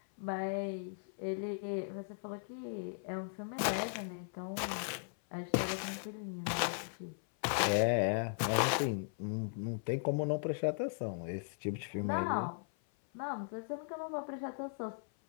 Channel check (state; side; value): silent; right; 53 dB below the other